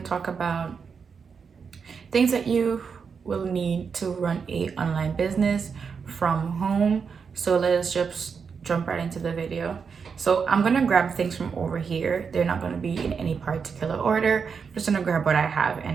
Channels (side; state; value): left; quieter; 5.9 dB